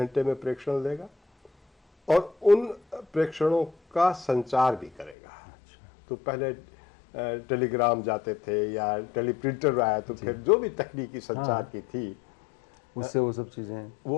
में प्रेक्षण देगा और उन प्रेक्षणों का संचार भी करेगा। तो पहले टेलीग्राम जाते थे या टेलीप्रिंटर आया तो फिर जो भी तकनीकी संचार की थी उससे वो सब चीज़ें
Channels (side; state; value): right; drops out; at 5.2 s